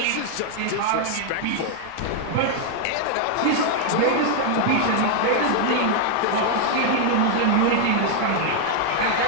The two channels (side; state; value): both; different; correlation 0.00